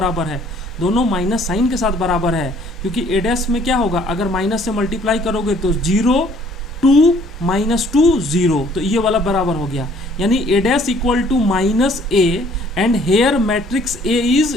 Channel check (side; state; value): both; normal; correlation 0.59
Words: है, दोनों माइनस साइन के साथ बराबर है, क्योंकि ए डैश में क्या होगा, अगर माइनस से मल्टीप्लाई करोगे तो 0 2 -2 0, तो ये वाला बराबर हो गया। यानी A dash equal to -a and here matrix A